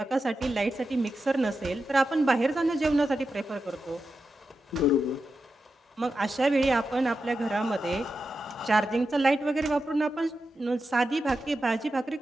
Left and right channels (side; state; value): both; normal; correlation 0.89